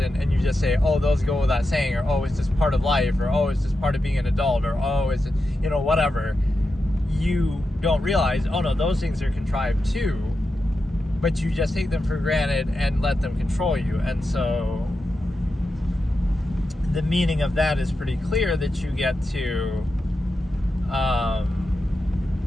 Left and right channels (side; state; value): both; normal; correlation 0.89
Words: and you just say, oh, those go without saying, or oh, it's just part of life, or oh, it's just part of being an adult, or oh, it's, whatever, you don't realize, oh no, those things are contrived too, but you just take them for granted and let them control you. And so the meaning of that is pretty clear, that you get to